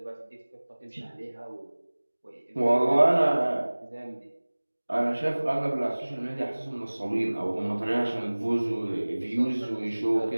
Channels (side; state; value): both; inverted; correlation -1.00